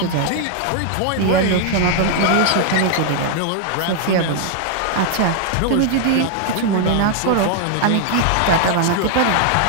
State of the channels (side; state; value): both; different; correlation 0.00